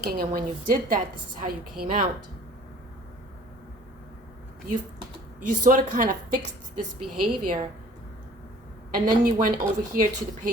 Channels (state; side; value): normal; both; correlation 0.51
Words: And when you did that, this is how you came out. You sort of kind of fixed this behavior. And then you went over here to the